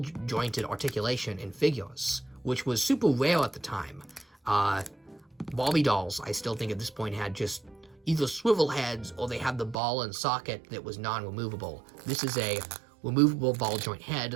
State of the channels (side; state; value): left; drops out; at 9.8 s